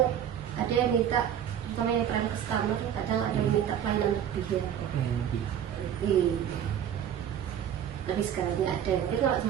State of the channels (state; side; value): quieter; left; 9.6 dB